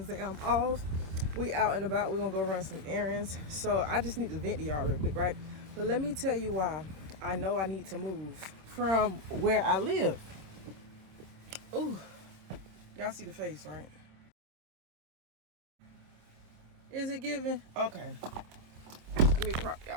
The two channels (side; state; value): left; late; 26 ms